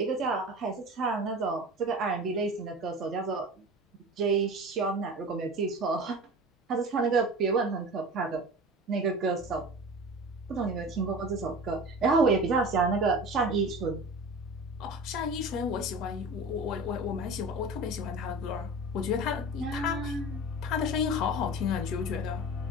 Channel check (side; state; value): both; normal; correlation 0.35